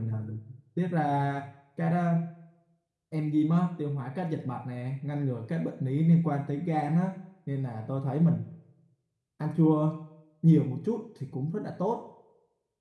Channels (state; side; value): identical; both; correlation 1.00